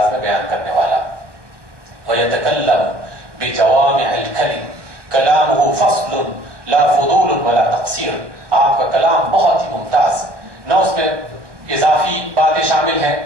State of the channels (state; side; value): late; left; 1.2 ms